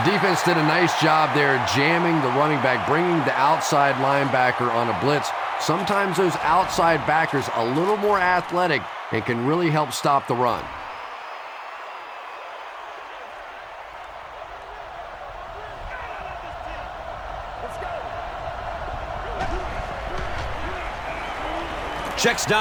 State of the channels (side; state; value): both; identical; correlation 1.00